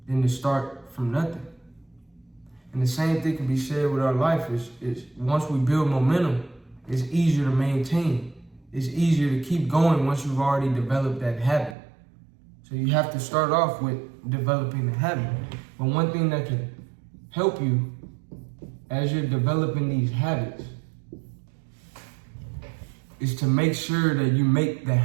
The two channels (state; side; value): drops out; left; at 11.8 s